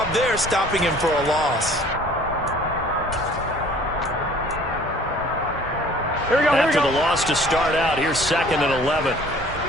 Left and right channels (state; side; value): normal; both; correlation 0.52